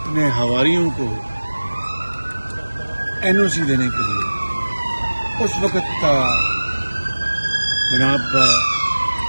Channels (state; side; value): inverted; both; correlation -1.00